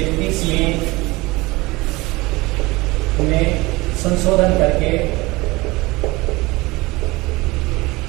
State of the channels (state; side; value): quieter; left; 22.0 dB